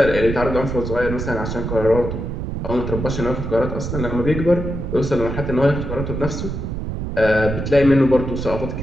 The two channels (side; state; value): right; noise; rumble, 4 dB below the sound